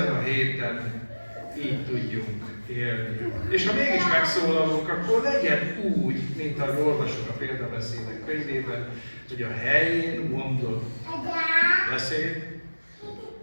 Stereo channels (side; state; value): both; inverted; correlation -1.00